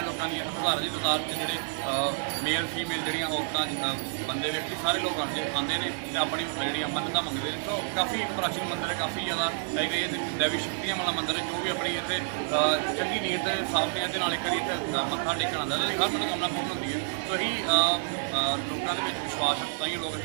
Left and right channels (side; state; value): left; silent; digital silence